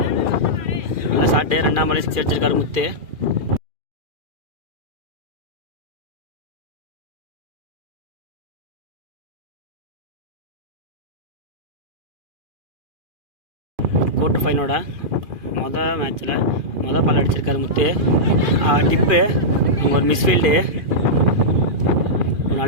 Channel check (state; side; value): late; left; 2.4 ms